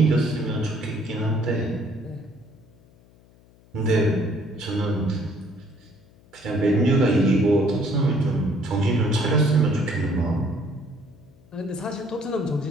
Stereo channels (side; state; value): left; noise; hum, 28 dB below the sound